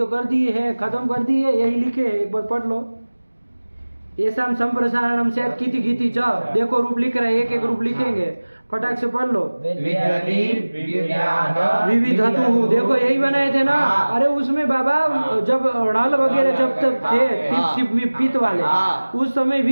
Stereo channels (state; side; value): inverted; both; correlation -1.00